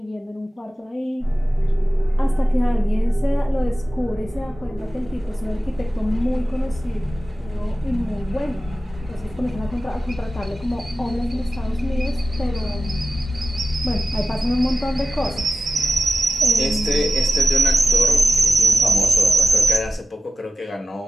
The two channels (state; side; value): normal; both; correlation 0.94